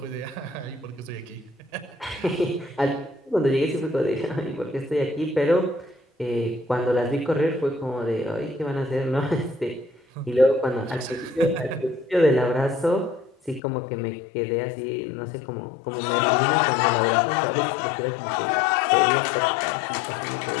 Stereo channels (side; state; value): right; drops out; at 13.6 s